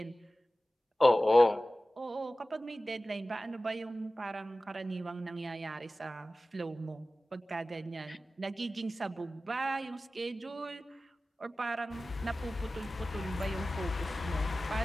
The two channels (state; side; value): normal; both; correlation 0.96